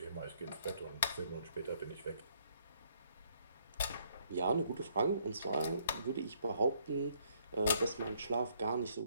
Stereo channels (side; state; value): both; inverted; correlation -0.68